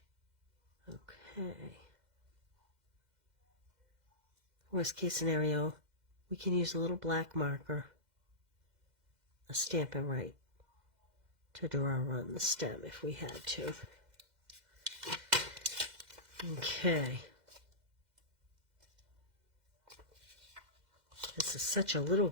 Okay. Worst case scenario, we can use a little black marker, a Stampin' Right, to draw on the stem if we had to. Okay. This is such a little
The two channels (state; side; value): late; left; 2.0 ms